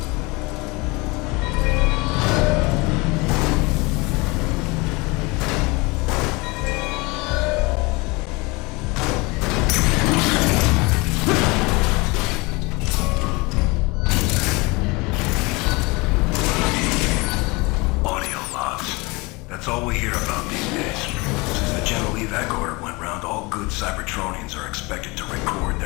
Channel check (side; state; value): right; quieter; 25.5 dB